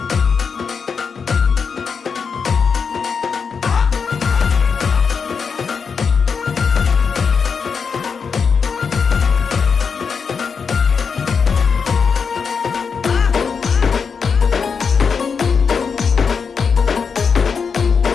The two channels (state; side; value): quieter; right; 5.8 dB